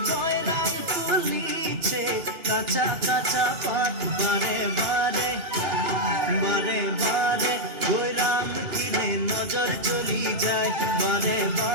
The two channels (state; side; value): late; left; 2.7 ms